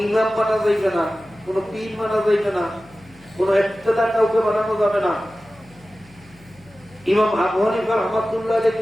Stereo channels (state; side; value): noise; left; hum, 26 dB below the sound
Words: ইমাম মানা যাইবে না, কোন পীর মানা যাইবে না, কোন ইক্তেদা কাউকে বানানো যাবে না। ইমাম আবু হানিফা রাহমাতুল্লাহ